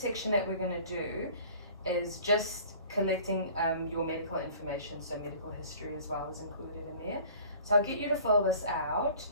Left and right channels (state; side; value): inverted; both; correlation -0.48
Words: section that we're going to do is just collecting your medical information, so medical history as well is included in there. So I'll get you to fill this out,